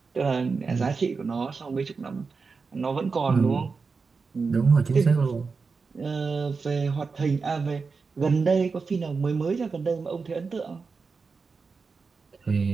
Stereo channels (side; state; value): left; quieter; 4.7 dB